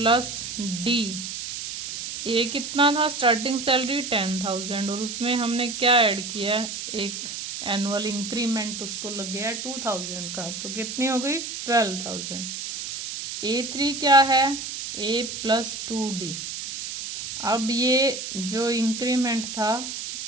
डी। ये कितना था, स्टार्टिंग सैलरी 10,000 और उसमें हमने क्या ऐड किया, एक एनुअल इंक्रीमेंट उसको लग गया 2,000 का, तो कितनी हो गई 12,000। A3 क्या है, a प्लस 2D। अब ये जो इंक्रीमेंट था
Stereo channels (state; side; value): noise; right; hiss, 7 dB below the sound